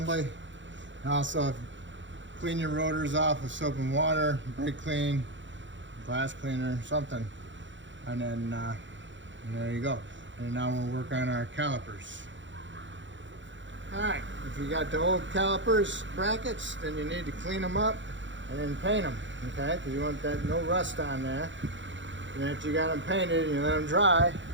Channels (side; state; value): left; late; 0.54 ms